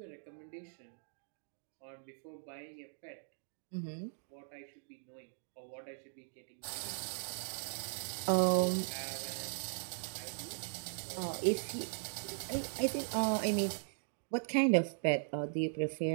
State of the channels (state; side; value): silent; left; digital silence